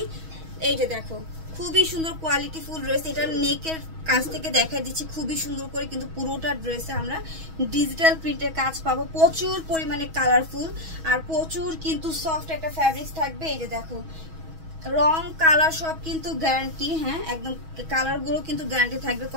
এই যে দেখো খুবই সুন্দর কোয়ালিটি ফুল ড্রেস। এটা নেকের কাজ থেকে দেখাই দিচ্ছি খুবই সুন্দর করে, কিন্তু পুরোটা ড্রেসে আমরা ডিজিটাল প্রিন্টের কাজ পাবো। প্রচুর পরিমাণে কালারফুল আর প্রচুর কিন্তু সফট একটা ফ্যাব্রিক্স থাকবে। এই যে দেখো রং কালার সব কিন্তু গ্যারান্টি, হ্যাঁ একদম কালারগুলো কিন্তু গ্যারান্টি থাকবে,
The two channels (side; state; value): left; late; 6.2 ms